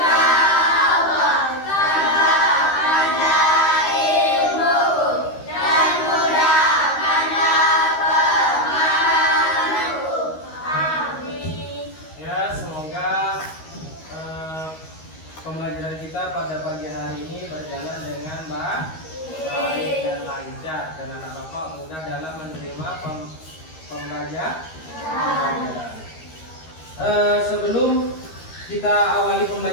Allah, tambahkanlah ilmuku dan mudahkanlah pemahamanku. Amin. Ya, semoga pembelajaran kita pada pagi hari ini berjalan dengan baik dan lancar, dan anak bapak mudah dalam menerima pembelajaran. Sebelum kita awali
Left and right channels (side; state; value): right; late; 13 ms